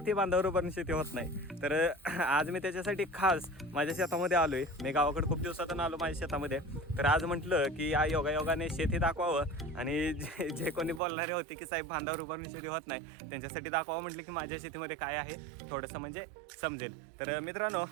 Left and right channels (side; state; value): left; drops out; at 11.0 s